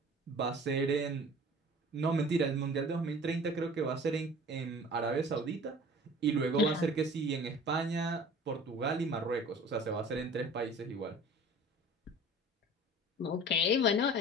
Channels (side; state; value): both; normal; correlation 0.44